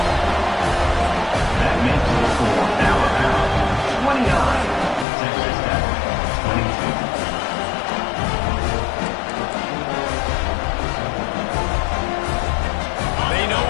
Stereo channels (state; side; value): drops out; right; at 5.1 s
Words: That makes the score now around 29. Texas Tech, 22. They know